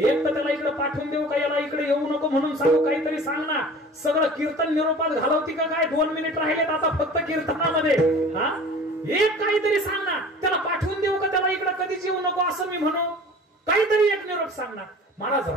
तर त्याला इकडे पाठवून देऊ का, याला इकडे येऊ नको म्हणून सांगू, काहीतरी सांग ना. सगळं कीर्तन निरोपात घालवती का काय, 2 मिनिट राहिलेत आता फक्त कीर्तनामध्ये, हा एक काहीतरी सांग ना. त्याला पाठवून देऊ का, त्याला इकडे कधीच येऊ नको असं मी म्हणू, काहीतरी एक निरोप सांग ना. महाराज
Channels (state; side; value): normal; both; correlation 0.43